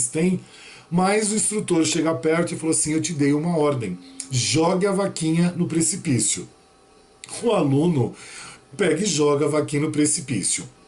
têm. Mas o instrutor chega perto e falou assim, eu te dei uma ordem, jogue a vaquinha no precipício. O aluno pega e joga a vaquinha no precipício.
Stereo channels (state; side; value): identical; both; correlation 1.00